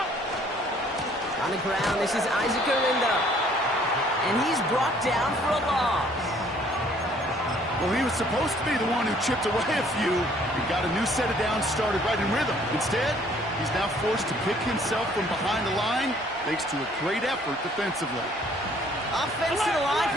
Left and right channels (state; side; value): normal; both; correlation 0.60